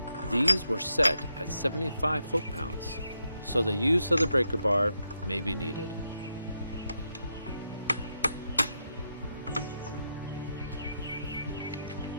These were set at 75 foot-pounds, so the use of the breaker bar may be needed.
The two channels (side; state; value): both; inverted; correlation -0.83